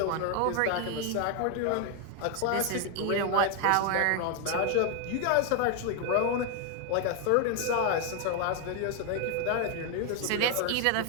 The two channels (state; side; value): different; both; correlation 0.01